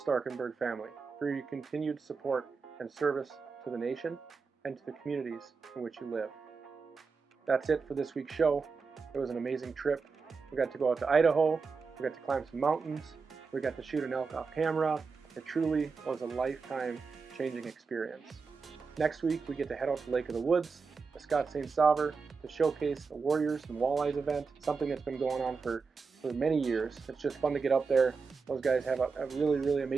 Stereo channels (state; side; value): quieter; left; 4.9 dB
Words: family for your continued support and service to the nation and to the communities in which you live. That's it for this week's show. It was an amazing trip. We got to go out to Idaho, we got to climb some mountains, we got to shoot an elk off camera. It truly was a lifetime-changing experience. Next week, we get to head out to Lake of the Woods, the Scott St. Sauveur, to showcase the Warriors and Walleyes event, something that's been going on for many years. It's just fun to get up there. Those guys have a really, really